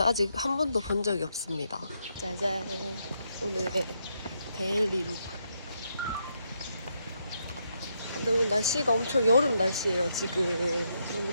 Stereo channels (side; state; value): both; inverted; correlation -0.79